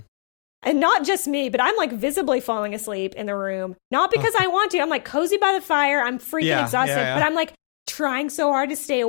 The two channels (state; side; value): silent; right; 64 dB below the other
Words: not just me, but I'm like visibly falling asleep in the room. Not because I want to. I'm like cozy by the fire. I'm freaking exhausted. But I'm like trying so hard to stay